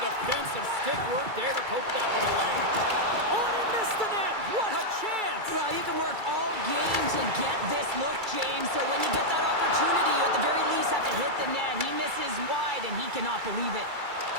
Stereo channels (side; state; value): left; late; 2.3 ms